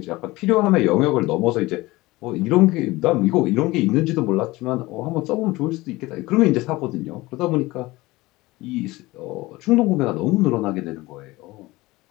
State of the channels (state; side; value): quieter; right; 20.2 dB